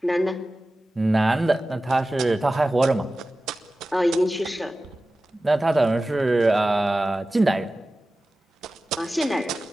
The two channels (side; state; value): both; normal; correlation 0.95